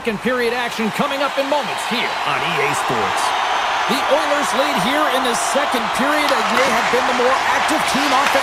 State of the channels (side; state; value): both; identical; correlation 1.00